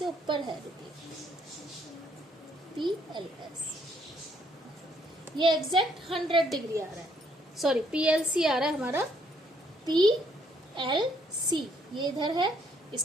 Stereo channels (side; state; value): both; normal; correlation 0.68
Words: ऊपर है। रुकिए, पी एल एस ये एग्जैक्ट 100 डिग्री आ रहा है। सॉरी, पी एल सी आ रहा है हमारा। पी एल सी ये इधर है,